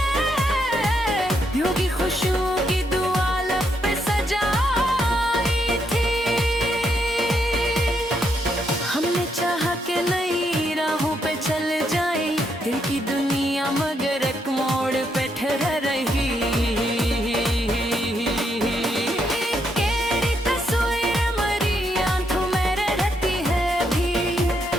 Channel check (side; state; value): both; normal; correlation 0.77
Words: यूं की खुशियों की दुआ लब पे सजाई थी। हमने चाहा कि नई राहों पे चल जाए, दिल की दुनिया मगर एक मोड़ पे ठहर रही। तेरी तस्वीर मरी आंखों में रहती है भी,